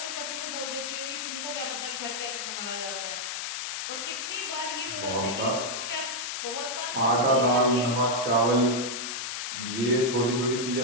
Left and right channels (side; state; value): left; noise; hiss, 4 dB below the sound